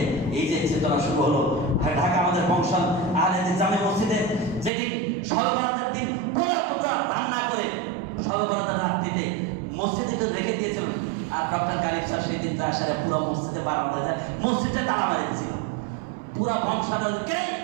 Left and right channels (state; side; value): drops out; left; at 4.7 s